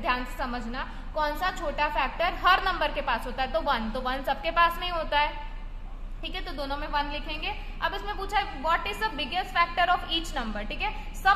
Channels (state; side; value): identical; both; correlation 1.00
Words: से समझना, कौन सा छोटा फैक्टर हर नंबर के पास होता है, तो 1 सबके पास नहीं होता है, ठीक है, तो दोनों में 1 लिखेंगे। अब इसमें पूछा है what is the biggest factor of each number, ठीक है।